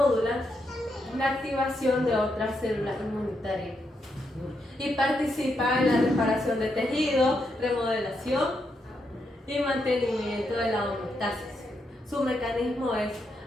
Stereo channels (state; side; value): normal; both; correlation 0.81